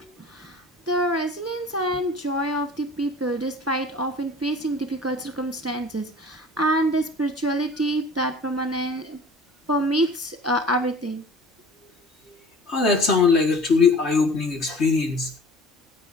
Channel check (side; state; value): both; normal; correlation 0.44